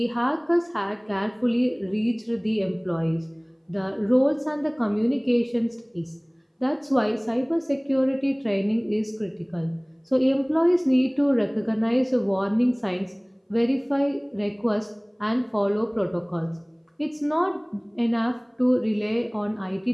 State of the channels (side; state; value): both; identical; correlation 1.00